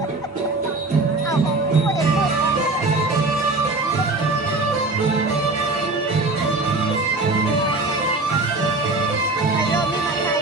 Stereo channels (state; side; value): quieter; left; 3.2 dB